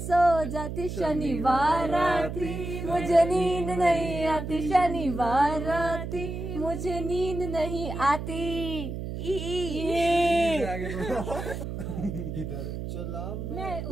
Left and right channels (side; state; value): right; noise; hum, 6 dB below the sound